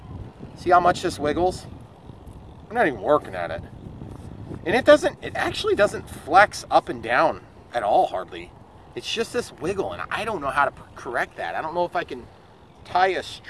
See how much this wiggles? I'm not even working at it. And it actually doesn't flex up and down at all, hardly. It's just this wiggle, and I don't know how to correct that. I don't know if I can tie a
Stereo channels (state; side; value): identical; both; correlation 1.00